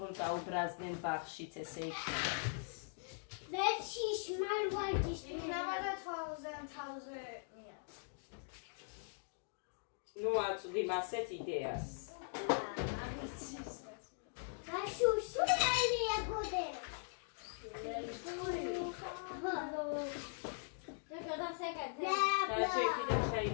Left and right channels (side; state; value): right; silent; digital silence